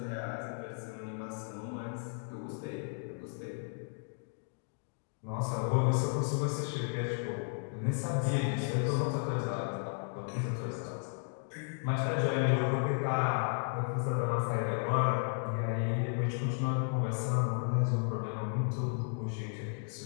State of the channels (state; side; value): silent; right; 55 dB below the other